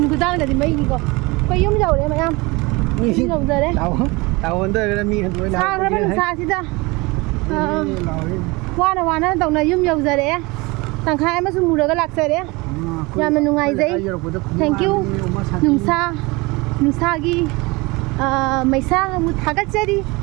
của ta là gì mấy cái quay yếm dầu đấy mày em yếm dầu giờ đấy Tao under ka mi han xa nó bên xa chứ ta qua nó tổng này yếm dầu giờ đấy thằng khai mà sung mù được cái lạc giờ đấy nhà mình nung ngày giấy thank you nung xa gi mày xa một thằng cách chơi đi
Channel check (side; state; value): left; quieter; 24.6 dB